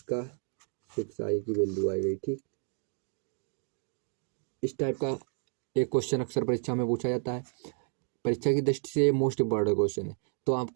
का 6i की वैल्यू आ गई, ठीक। इस टाइप का एक क्वेश्चन अक्सर परीक्षा में पूछा जाता है, परीक्षा की दृष्टि से मोस्ट इम्पॉर्टेंट क्वेश्चन है, तो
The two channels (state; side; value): silent; left; 57 dB below the other